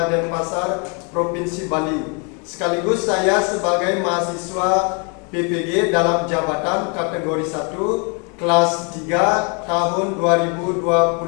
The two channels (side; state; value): right; quieter; 35.4 dB